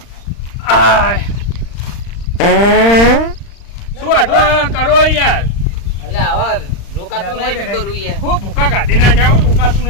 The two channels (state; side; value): late; right; 35 ms